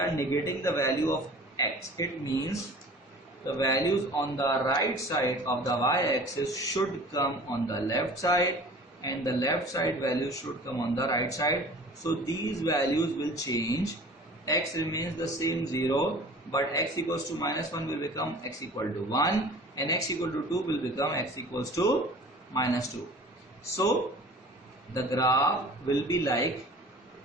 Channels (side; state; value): both; normal; correlation 0.44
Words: negating the value of x. It means the values on the right side of the y-axis should come on the left side and the left side values should come on the right side. So these values will change. X remains the same 0, but x equals to -1 will become x equal to 1, and x equal to 2 will become x equals to -2. So the graph will be like